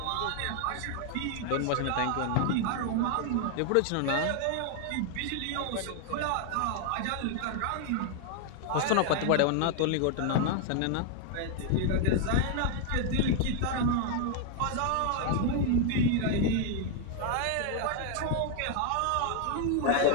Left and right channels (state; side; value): different; both; correlation 0.00